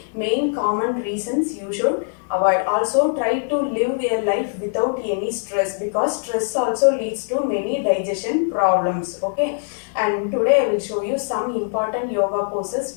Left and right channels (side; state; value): right; silent; digital silence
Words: main common reasons you should avoid. Also try to live a life without any stress because stress also leads to many digestion problems. Okay, and today I will show you some important yoga